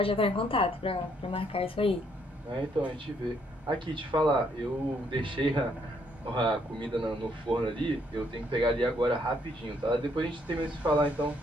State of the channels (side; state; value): both; normal; correlation 0.70